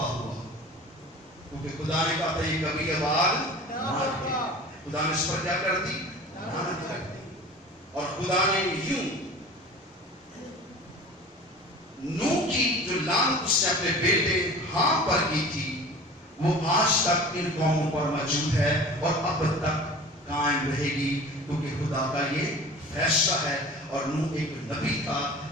ہوا، کیونکہ خدا نے کہا تھا یہ کبھی آباد نہ رہے۔ خدا نے اس پر کیا کر دی؟ لعنت کر دی۔ اور خدا نے یوں نوح کی جو لعنت اس نے اپنے بیٹے ہام پر کی تھی وہ آج تک ان قوموں پر موجود ہے اور اب تک قائم رہے گی، کیونکہ خدا کا یہ فیصلہ ہے۔ اور نوح ایک نبی تھا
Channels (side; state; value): both; normal; correlation 0.40